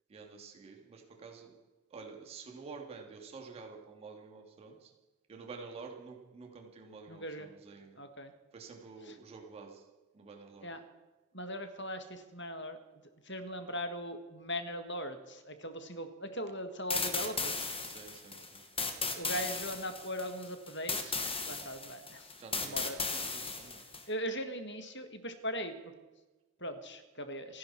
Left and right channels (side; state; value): both; normal; correlation -0.13